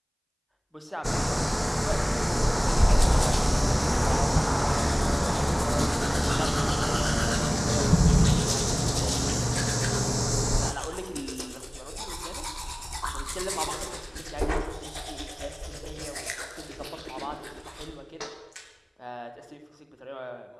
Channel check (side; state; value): both; identical; correlation 1.00